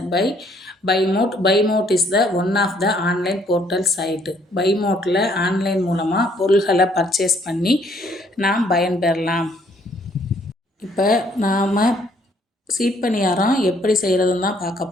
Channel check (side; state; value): both; normal; correlation 0.65